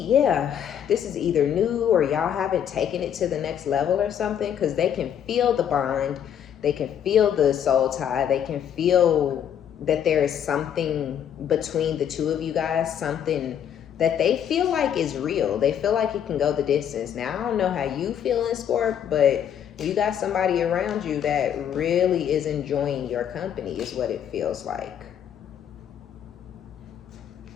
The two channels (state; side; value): quieter; right; 9.1 dB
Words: yeah, this is either new or y'all haven't taken it to the next level or something, because they can feel the bond, they can feel the soul tie, they can feel that there is something between the two of you guys, something that they feel like is real. They feel like it can go the distance. Now, I don't know how you feel in Scorp, but you got somebody around you that really is enjoying your company, is what it feels like.